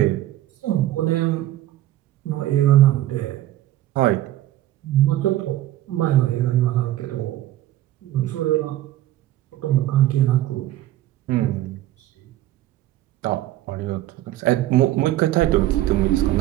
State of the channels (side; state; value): left; quieter; 14.5 dB